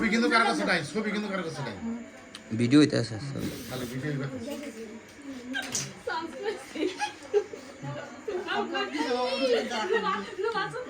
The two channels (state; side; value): identical; both; correlation 1.00